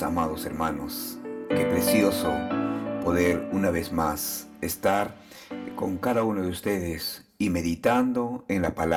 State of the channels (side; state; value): both; identical; correlation 1.00